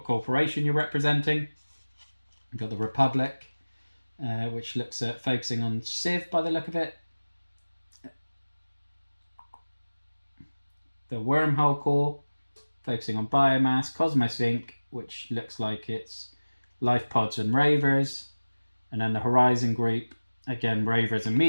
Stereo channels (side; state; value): both; inverted; correlation -1.00